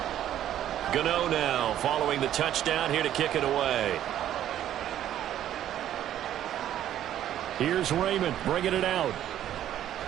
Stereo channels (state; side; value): quieter; left; 11.5 dB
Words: Gano now following the touchdown here to kick it away. Here's Raymond bringing it out.